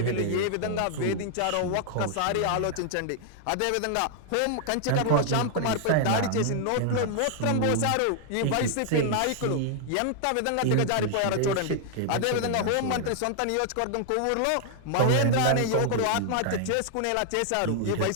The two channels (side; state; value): both; different; correlation 0.00